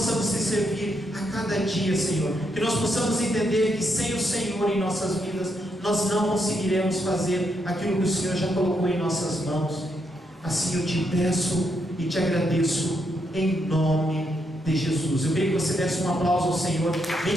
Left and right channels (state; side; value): normal; both; correlation 0.79